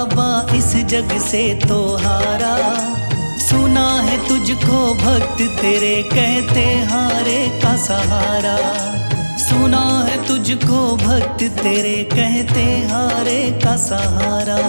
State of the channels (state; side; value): inverted; both; correlation -1.00